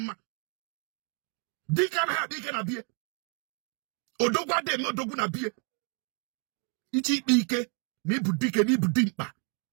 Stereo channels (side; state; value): left; quieter; 34.8 dB